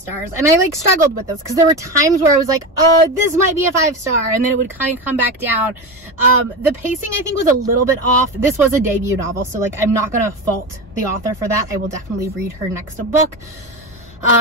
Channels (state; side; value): normal; both; correlation 0.21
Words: and I like struggled with this because there were times where I was like, this might be a 5-star, and then it would kind of come back down. The pacing I think was a little bit off. This was a debut novel, so like I'm not gonna fault the author for that. I will definitely read her next book.